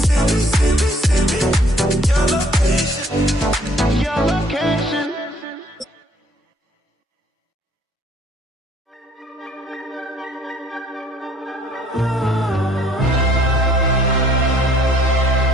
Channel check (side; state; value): both; normal; correlation 0.61